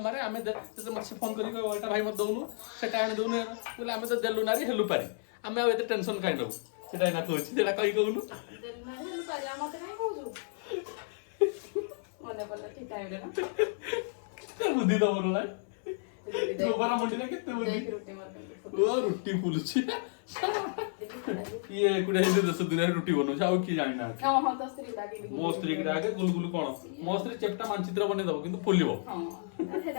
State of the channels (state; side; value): silent; right; 56 dB below the other